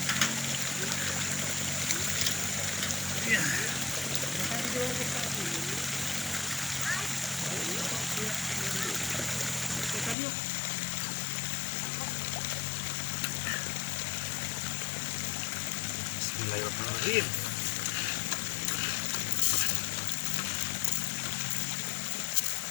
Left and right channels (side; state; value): right; drops out; at 10.2 s